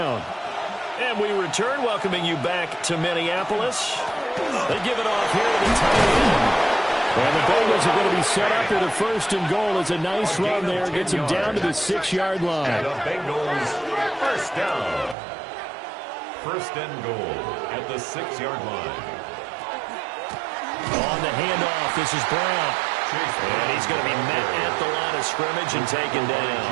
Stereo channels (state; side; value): drops out; left; at 15.2 s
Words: And we return, welcoming you back to Minneapolis. They give it off here to the tight end. And the Bengals are going to be set up with a 1st and goal. It's a nice run there. Gets him down to the 6-yard line. And the Bengals first down. 1st and goal at the 6-yard line. On the handoff, this is Brown. And he's going to be met at the line of scrimmage and taken